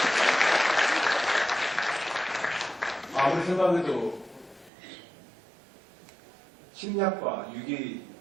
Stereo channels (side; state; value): left; drops out; at 4.7 s